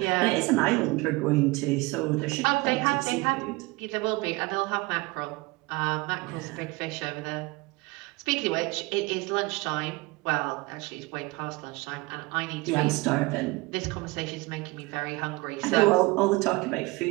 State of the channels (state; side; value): quieter; left; 23.6 dB